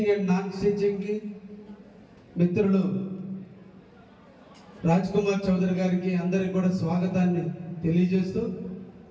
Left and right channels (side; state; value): both; identical; correlation 1.00